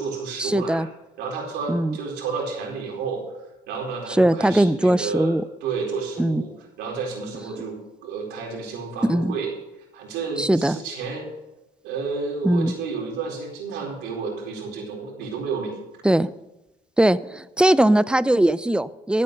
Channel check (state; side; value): normal; both; correlation 0.86